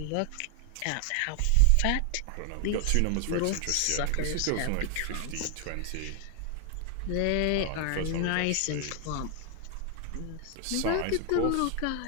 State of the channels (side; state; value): both; different; correlation 0.00